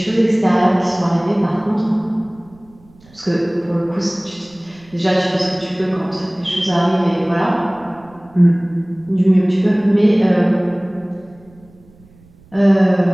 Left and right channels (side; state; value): right; noise; rumble, 27 dB below the sound